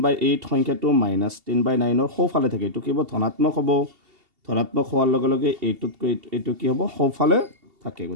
সংখ্যাটো -10/9ৰ সোঁফালে থাকে এইটো কি হ'ব ধনাত্মক হ'ব ধনাত্মক হোৱাৰ লগে লগে এইটোতকৈ এইটো কি হ'ব সোঁফালে থাকে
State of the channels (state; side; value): late; left; 2.7 ms